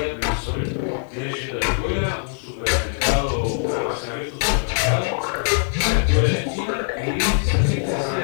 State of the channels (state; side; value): silent; right; digital silence